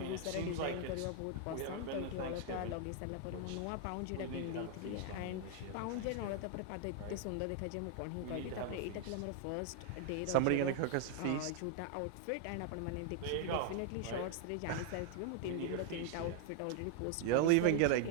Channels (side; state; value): both; different; correlation 0.00